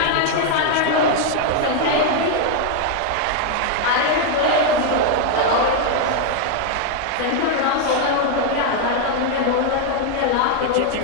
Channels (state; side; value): different; both; correlation 0.00